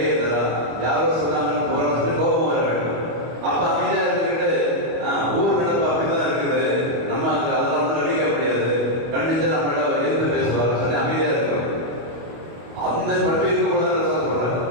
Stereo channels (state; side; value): late; left; 25 ms